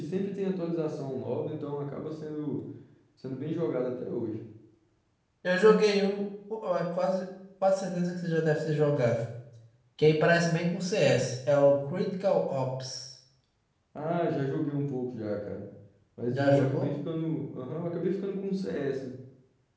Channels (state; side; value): identical; both; correlation 1.00